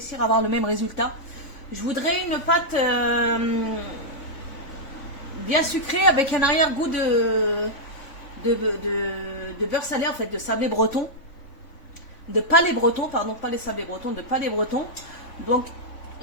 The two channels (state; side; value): late; right; 3.5 ms